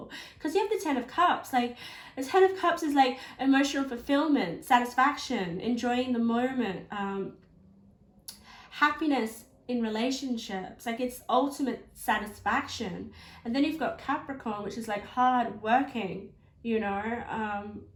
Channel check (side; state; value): both; identical; correlation 1.00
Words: Because you have the 10 of Cups. Like, the 10 of Cups is like emotional fulfillment, satisfaction, enjoying the moment, happiness, in relationships. Like, it's ultimate satisfaction. And then you've got Capricorn, which is like hard working, you know,